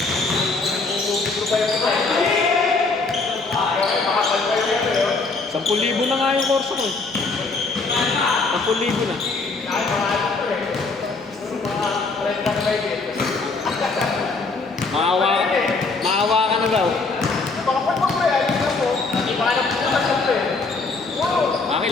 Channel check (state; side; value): quieter; right; 3.9 dB